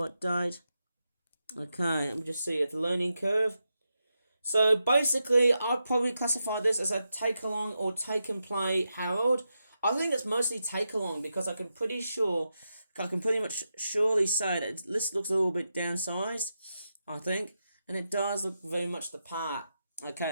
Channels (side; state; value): both; inverted; correlation -0.87